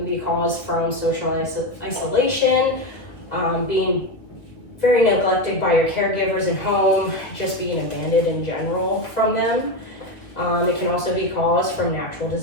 be caused from social isolation, being very neglected by your caregivers at home, just being abandoned in general from them. It can also be caused from natural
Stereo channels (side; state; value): right; late; 1.7 ms